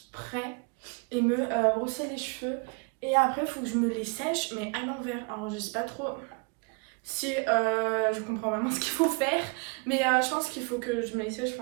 et me brosser les cheveux. Et après, il faut que je me les sèche, mais à l'envers. Alors, je sais pas trop si je comprends vraiment ce qu'il faut faire, mais je pense qu'il faut que je me les sèche,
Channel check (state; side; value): quieter; left; 32.7 dB